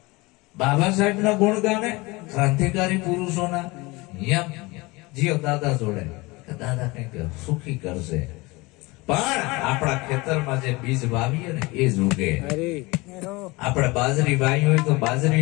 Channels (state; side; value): quieter; right; 23.5 dB